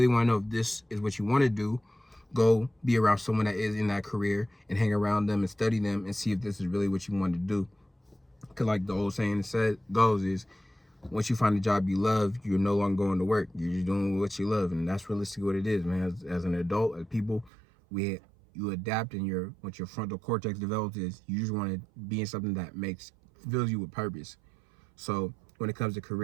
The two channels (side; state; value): left; drops out; at 17.5 s